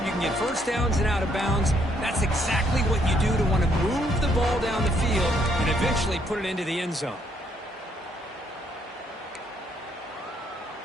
you can get first downs and out of bounds, that's exactly what you do to want to move the ball down the field and eventually put it into the end zone.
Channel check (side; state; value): both; normal; correlation 0.71